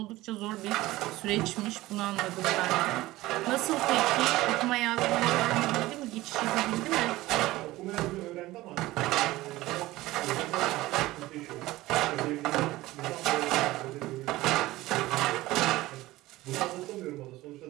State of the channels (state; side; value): quieter; left; 17.8 dB